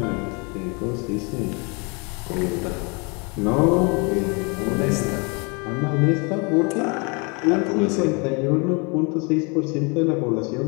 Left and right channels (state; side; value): quieter; right; 31.6 dB